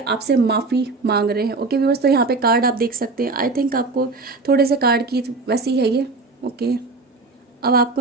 माफी मांग रहे हैं। ओके व्यूअर्स, तो यहाँ पे कार्ड आप देख सकते हैं। आई थिंक आपको थोड़े से कार्ड की वैसी है ये। ओके, अब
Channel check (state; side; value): quieter; left; 3.7 dB